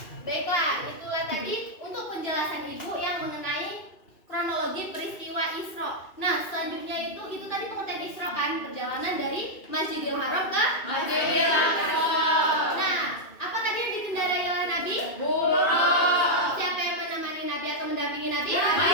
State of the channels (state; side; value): late; right; 2.6 ms